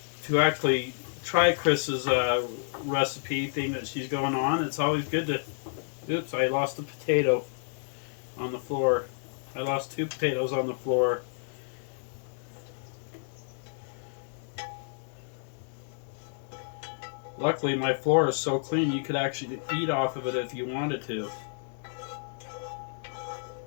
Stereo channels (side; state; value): right; silent; digital silence